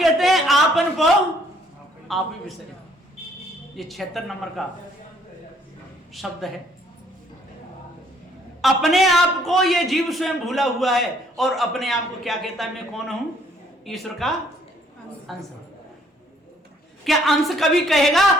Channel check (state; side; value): normal; both; correlation 0.64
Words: हैं आपन को आप ही विसरे। ये 76 नंबर का शब्द है। अपने आप को ये जीव स्वयं भूला हुआ है और अपने आप को क्या कहता है? मैं कौन हूं? ईश्वर का अंश। क्या अंश कभी कहेगा